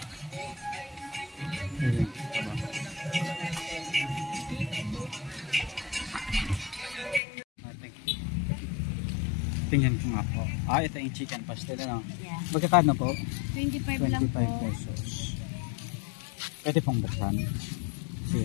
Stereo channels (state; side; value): drops out; right; at 7.2 s